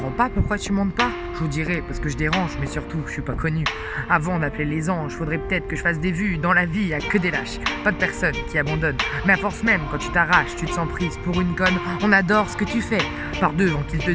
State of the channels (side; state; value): both; identical; correlation 1.00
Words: pas pourquoi tu montes pas. Je vous dirais, parce que je dérange, mais surtout, je suis pas connu. Avant d'appeler les anges, faudrait peut-être que je fasse des vues. Dans la vie, y a que des lâches, pas de personnes qui abandonnent. Mais à force même, quand tu t'arraches, tu te sens prise pour une conne. On adore ce que tu fais. Par devant qu'ils te